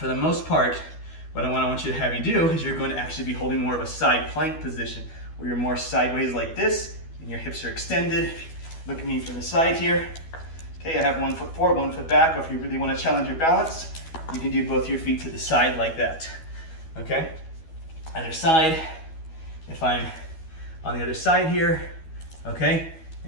the most part, what I want you to have you do is you're going to actually be holding more of a side plank position where you're more sideways like this and your hips are extended. Look at me from the side here. Okay, I have 1 foot forward, 1 foot back, or if you really want to challenge your balance, you can do both your feet to the side like that, okay? Other side, if I'm on the other side here, okay,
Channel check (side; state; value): right; late; 12 ms